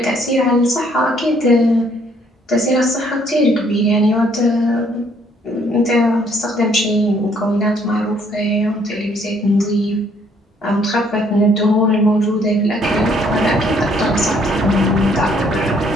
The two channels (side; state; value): both; normal; correlation 0.65